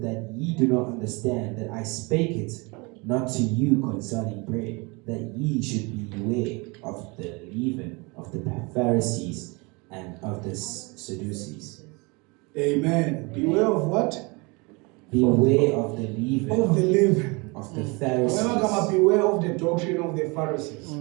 that ye do not understand that I spake it not to you concerning bread, that ye should beware of the leaven of the Pharisees and of the Sadducees? Amen. Beware of what? Beware of the leaven Of the leaven. of the Remember, Pharisees. beware of the doctrine of the Pharisees.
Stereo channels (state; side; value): quieter; left; 27.9 dB